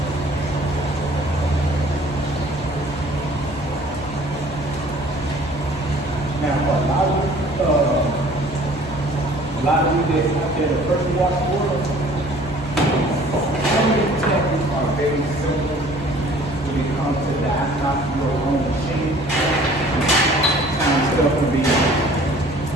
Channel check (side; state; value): both; normal; correlation 0.52